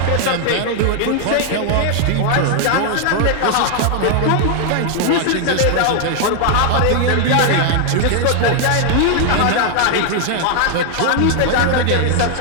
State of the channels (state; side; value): different; both; correlation 0.00